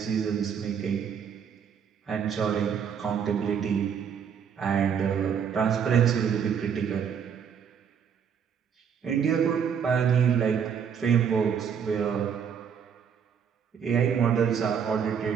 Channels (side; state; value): left; quieter; 7.5 dB